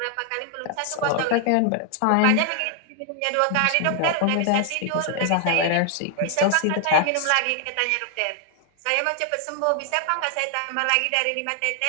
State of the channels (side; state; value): both; different; correlation 0.00